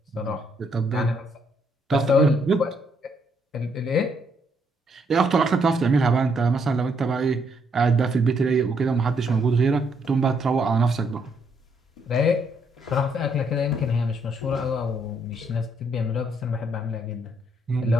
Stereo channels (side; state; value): both; normal; correlation 0.72